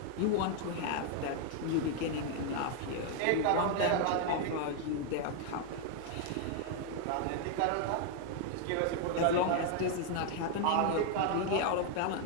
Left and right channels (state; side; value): different; both; correlation 0.00